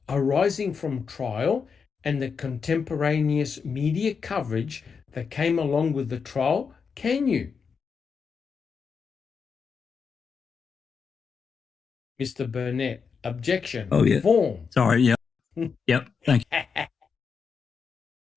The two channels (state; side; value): quieter; right; 5.8 dB